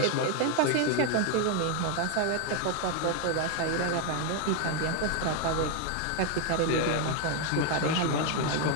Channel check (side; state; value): both; different; correlation 0.01